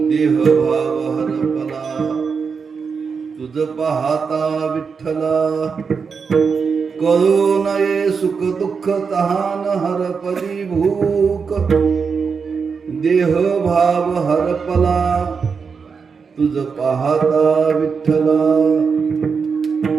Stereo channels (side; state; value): left; quieter; 5.6 dB